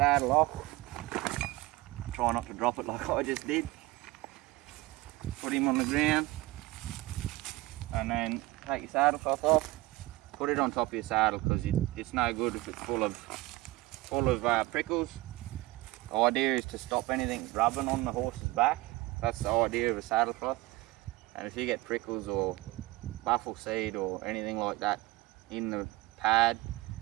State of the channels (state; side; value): quieter; left; 20.3 dB